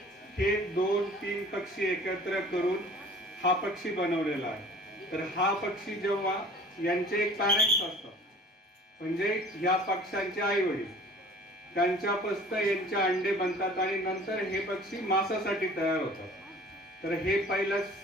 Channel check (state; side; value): normal; both; correlation 0.47